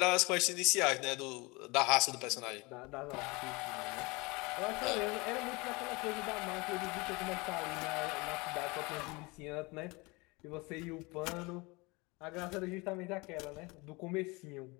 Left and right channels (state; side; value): quieter; right; 25.6 dB